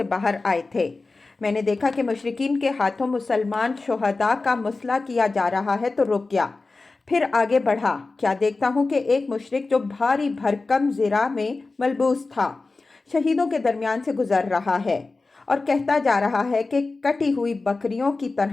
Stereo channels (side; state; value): right; quieter; 3.6 dB